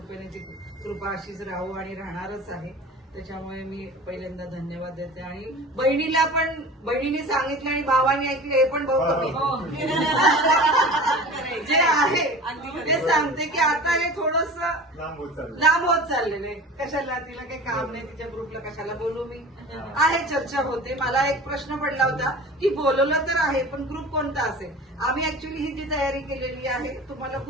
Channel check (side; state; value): both; normal; correlation 0.38